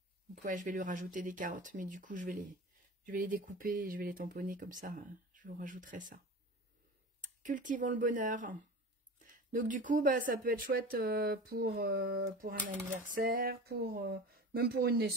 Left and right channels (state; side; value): normal; both; correlation 0.33